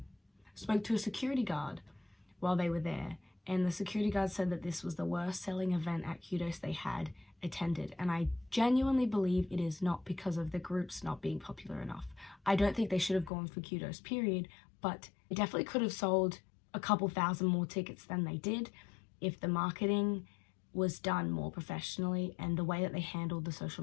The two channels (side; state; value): right; drops out; at 13.3 s